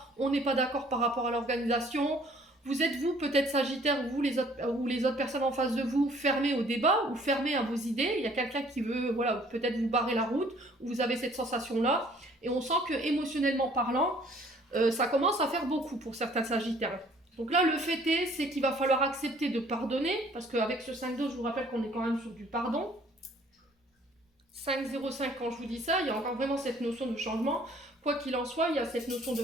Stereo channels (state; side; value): normal; both; correlation 0.57